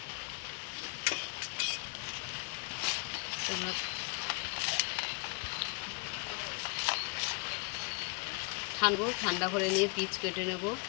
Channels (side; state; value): right; quieter; 33.5 dB